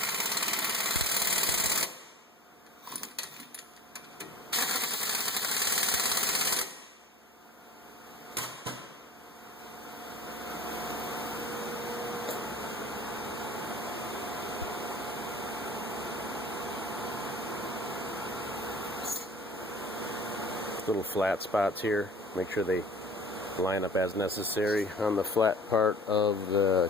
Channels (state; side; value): normal; both; correlation 0.42